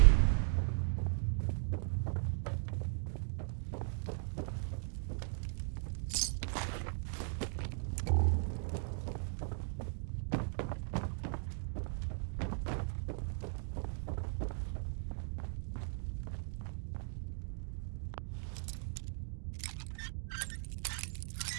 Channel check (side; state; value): left; silent; digital silence